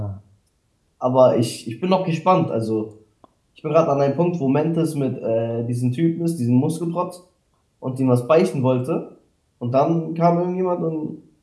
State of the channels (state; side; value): identical; both; correlation 1.00